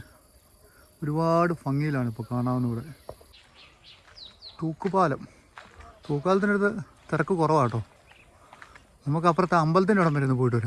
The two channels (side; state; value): both; identical; correlation 1.00